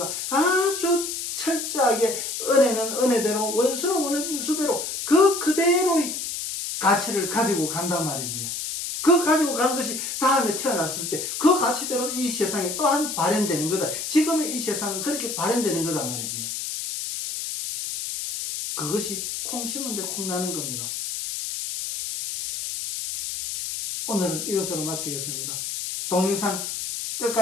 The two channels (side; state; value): left; noise; hiss, 4 dB below the sound